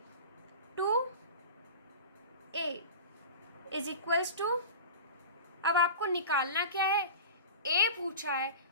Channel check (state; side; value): inverted; both; correlation -0.32